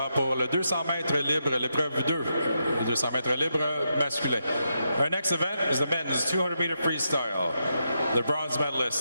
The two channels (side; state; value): both; inverted; correlation -0.83